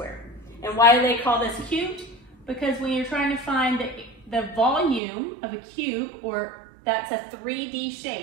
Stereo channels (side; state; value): left; drops out; at 5.0 s